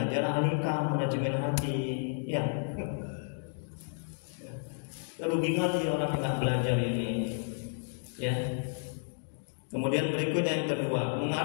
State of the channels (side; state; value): right; silent; digital silence